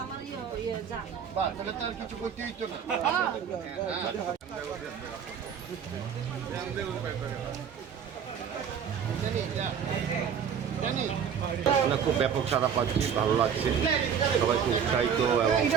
তাহলে তার কিছু করতে হইতো না। খুব ব্যাপক সাড়া পাচ্ছি, ভালো লাগছে, সবাই খুব উৎসাহিত এবং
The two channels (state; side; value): quieter; left; 7.7 dB